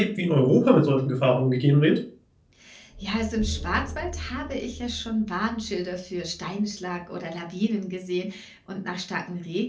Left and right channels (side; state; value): both; identical; correlation 1.00